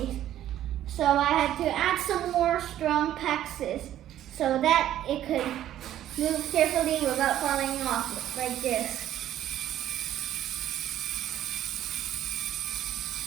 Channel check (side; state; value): left; quieter; 12.2 dB